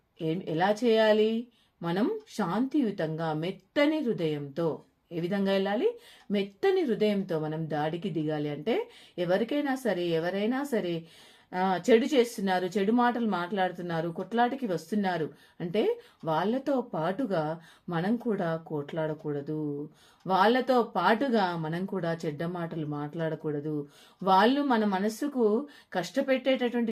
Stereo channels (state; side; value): identical; both; correlation 1.00